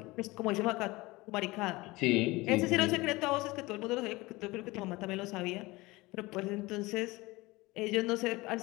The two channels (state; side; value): quieter; right; 21.6 dB